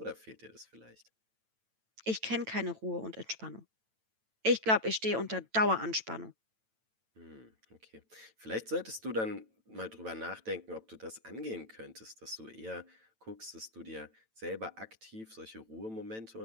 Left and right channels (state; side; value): late; left; 9.0 ms